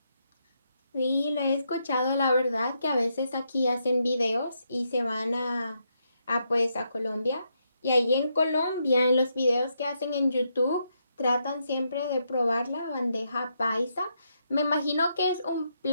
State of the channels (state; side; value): inverted; both; correlation -0.79